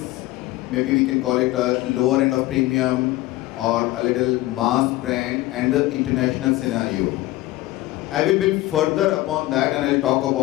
maybe we can call it a lower end of premium or a little mass brand, and the international scenario. I will build further upon that, and I'll talk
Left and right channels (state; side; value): quieter; right; 17.4 dB